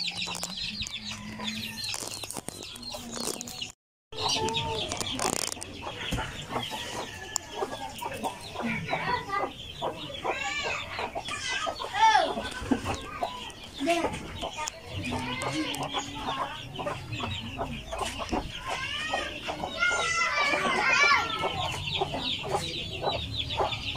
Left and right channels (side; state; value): both; identical; correlation 1.00